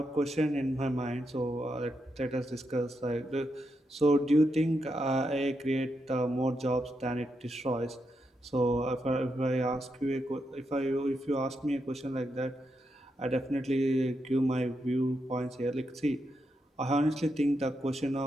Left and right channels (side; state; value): both; normal; correlation 0.83